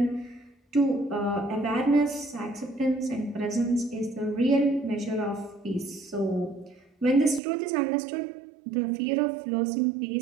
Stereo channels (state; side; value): drops out; left; at 7.4 s